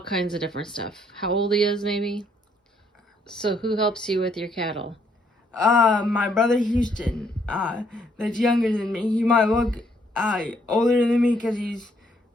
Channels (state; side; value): normal; both; correlation 0.69